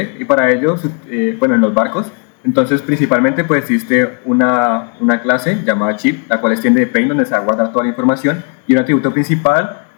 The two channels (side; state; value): right; quieter; 39.6 dB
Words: y para ello, bueno, en los barcos, entonces principalmente pues existe una clase llamada chip, la cual extiende de plane, donde se va a guardar toda la información, y el atributo principal,